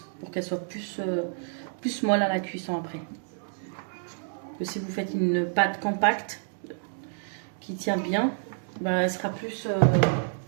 Pour qu'elle soit plus molle à la cuisson après. Que si vous faites une pâte compacte, qui tient bien, bah, elle sera plus,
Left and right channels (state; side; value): silent; left; digital silence